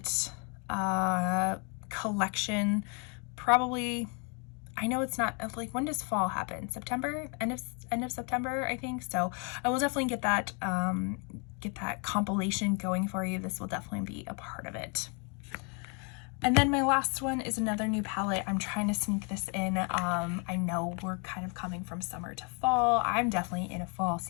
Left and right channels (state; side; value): quieter; right; 35.8 dB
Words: collection probably. I know it's not like, when does fall happen? September, end of September, I think. So I will definitely get that compilation going for you. This will definitely be a part of it. And then my last one is another new palette. I'm trying to sneak this in. I know we're kind of coming from summer to fall. I'm definitely in a fall